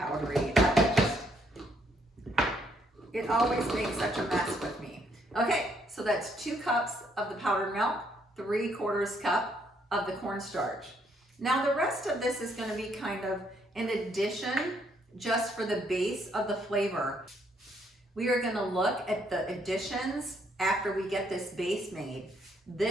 It always makes such a mess with me. Okay, so that's 2 cups of the powdered milk, 3/4 cup of the cornstarch. Now the rest of this is going to be kind of an addition just for the base of the flavor. We are going to look at the additions after we get this base made.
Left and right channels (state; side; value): normal; both; correlation 0.71